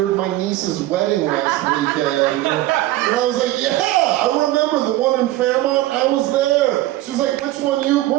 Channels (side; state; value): left; quieter; 16.1 dB